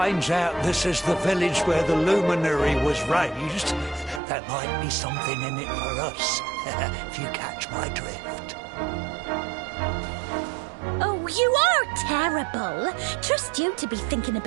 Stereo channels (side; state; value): left; drops out; at 4.2 s